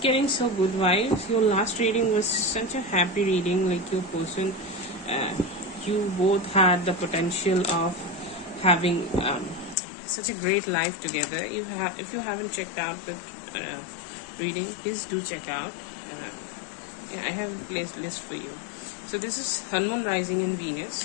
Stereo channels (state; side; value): drops out; right; at 9.8 s